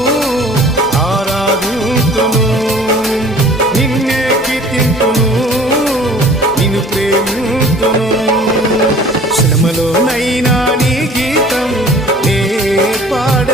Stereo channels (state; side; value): normal; both; correlation 0.49